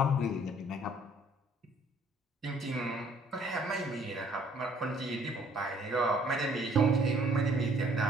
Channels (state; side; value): normal; both; correlation 0.60